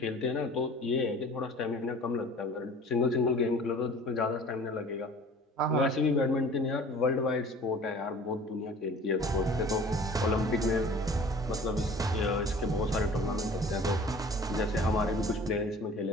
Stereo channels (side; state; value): both; normal; correlation 0.46